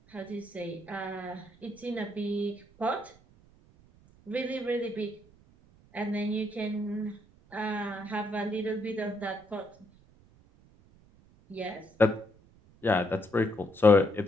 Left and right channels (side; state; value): right; noise; rumble, 28 dB below the sound